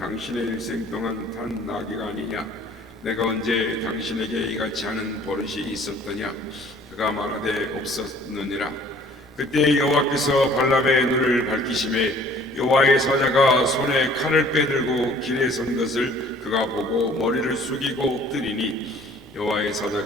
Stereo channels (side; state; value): right; noise; rumble, 27 dB below the sound